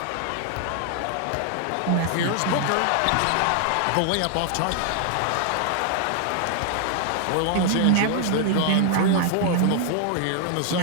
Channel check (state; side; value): different; both; correlation 0.00